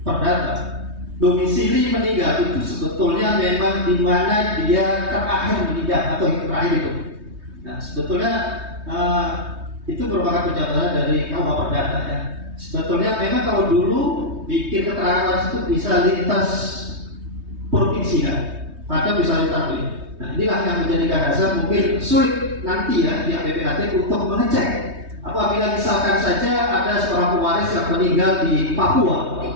perdata, domisili meninggal itu sebetulnya memang di mana dia terakhir meninggal atau yang terakhir itu. Nah, sebetulnya itu merupakan penjelasan dari KUH Perdata ya. Sebetulnya memang kalau dulu bikin keterangan waris itu bisa lintas provinsi kan, atau bisa lintas ini. Nah, inilah yang menjadikan dasar mungkin sulit nanti ya pihak PPAT untuk mengecek apabila misalkan saja ada seorang pewaris yang meninggal di Papua,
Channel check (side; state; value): left; late; 3.2 ms